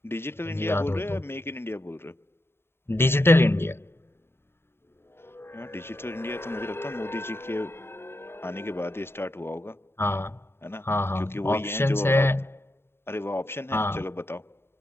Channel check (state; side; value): late; right; 0.11 ms